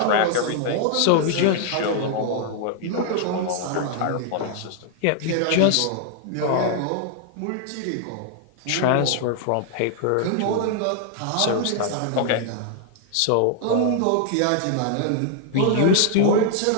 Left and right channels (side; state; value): both; different; correlation 0.00